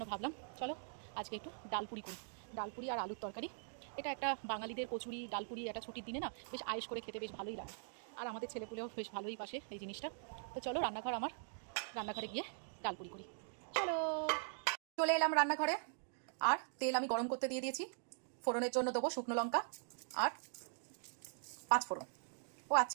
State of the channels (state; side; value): silent; left; digital silence